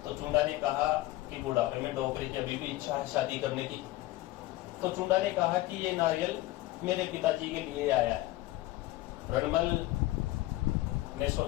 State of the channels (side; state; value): right; quieter; 17.6 dB